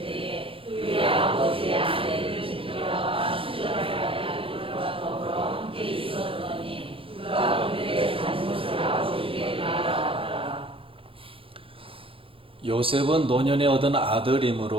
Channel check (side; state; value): left; late; 0.26 ms